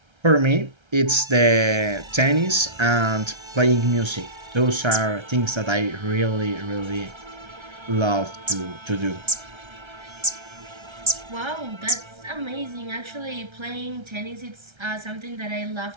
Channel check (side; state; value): left; late; 1.3 ms